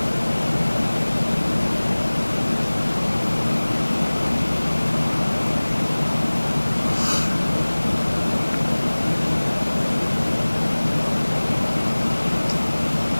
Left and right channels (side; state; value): both; inverted; correlation -1.00